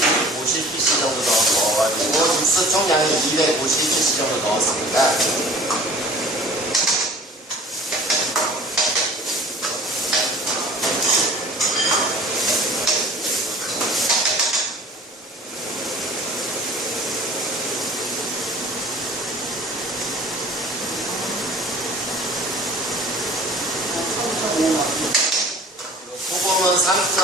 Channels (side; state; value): both; normal; correlation 0.47